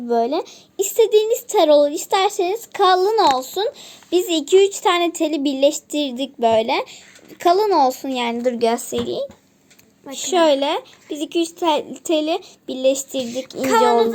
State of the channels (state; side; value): identical; both; correlation 1.00